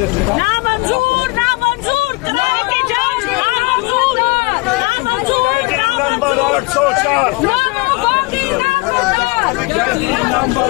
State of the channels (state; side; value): quieter; right; 25.8 dB